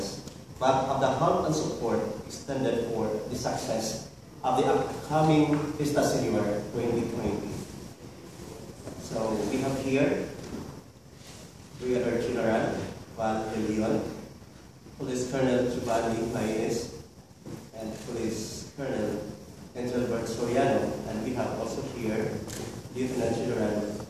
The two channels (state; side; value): identical; both; correlation 1.00